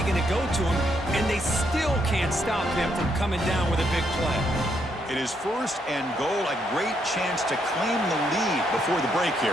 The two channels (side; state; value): both; normal; correlation 0.75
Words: going to go to him, and they still can't stop him from coming down with a big play. It is first and goal. A great chance to claim the lead before the break